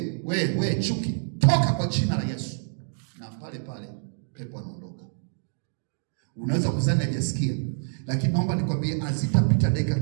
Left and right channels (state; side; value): silent; left; digital silence